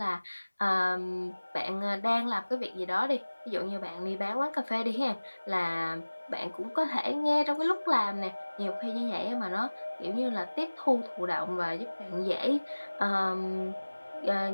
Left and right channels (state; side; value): inverted; both; correlation -1.00